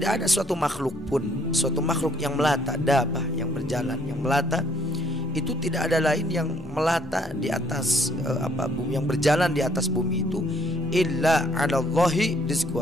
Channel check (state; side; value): noise; left; hum, 24 dB below the sound